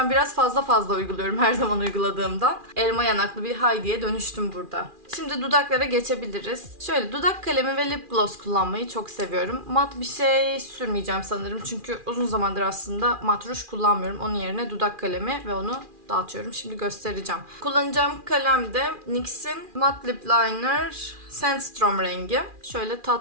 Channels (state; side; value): late; left; 2.4 ms